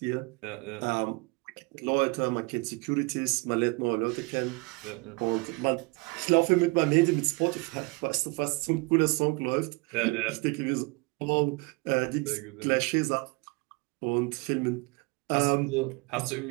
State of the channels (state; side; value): quieter; left; 27.7 dB